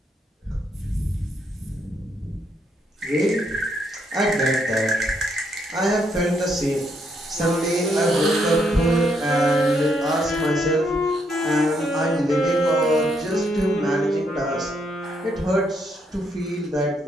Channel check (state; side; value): normal; both; correlation 0.75